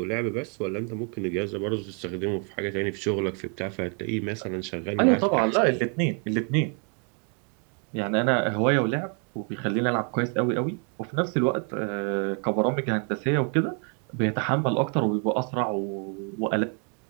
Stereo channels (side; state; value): left; quieter; 39.4 dB